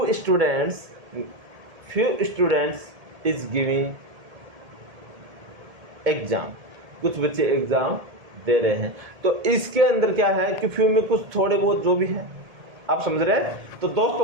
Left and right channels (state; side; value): late; left; 1.7 ms